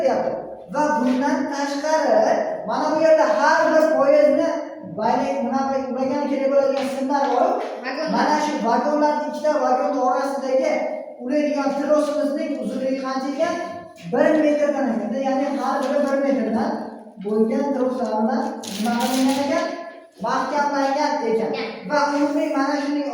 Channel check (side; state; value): both; identical; correlation 1.00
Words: deyapti. Va bundan tashqari mana bu yerda har bir poyezdni bayrak bunaqa ulagan kerak bo'ladigan simlar bor. Mana shu vagonlarning ikkita vagon orasidagi ulaydigan trosimizning uzunligi qancha ekan? 1 metrdan ekan. Ya'ni har biri 1 metrdan bo'lgan troslardan bunaqa qilingan ekan, mahkamlangan ekan. Va umumiy mana shuning